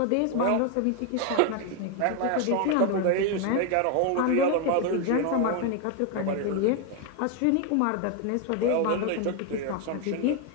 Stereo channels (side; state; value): both; different; correlation 0.01